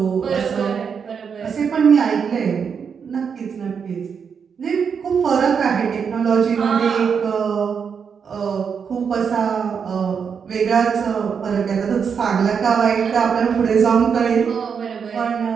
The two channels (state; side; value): quieter; left; 6.6 dB